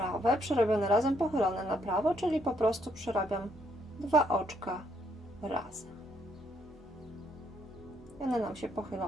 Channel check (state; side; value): normal; both; correlation 0.72